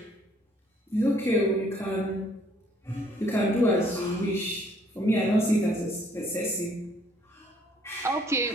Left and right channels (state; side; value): normal; both; correlation 0.63